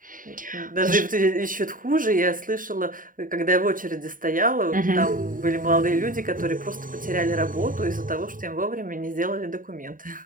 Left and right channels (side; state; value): left; late; 0.39 ms